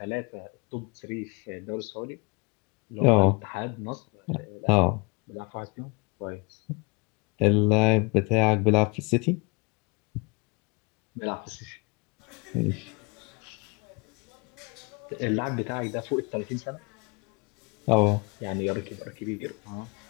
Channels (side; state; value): right; quieter; 29.1 dB